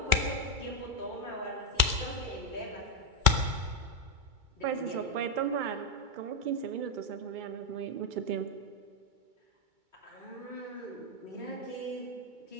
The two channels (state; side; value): late; left; 2.3 ms